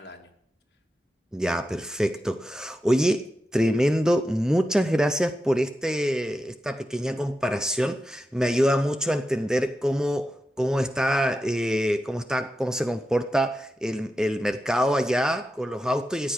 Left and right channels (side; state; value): both; normal; correlation 0.90